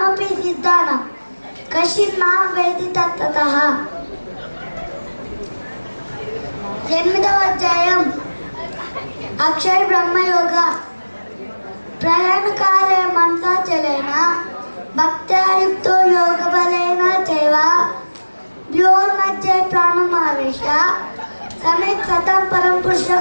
సిద్ధానాం కశ్చిన్ మాం వేది తత్తతః. ఎనిమిదవ అధ్యాయం అక్షర బ్రహ్మయోగ. ప్రయాణకాలే మనసా చలేన భక్త్యాయుక్తో యోగ బలేన చైవ వ్యోర్మధ్యే ప్రాణమావేశ సమ్యక్ సతం పరం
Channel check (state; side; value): inverted; both; correlation -1.00